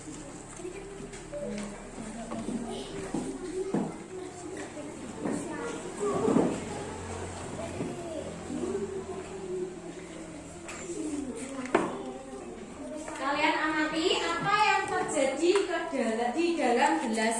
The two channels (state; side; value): identical; both; correlation 1.00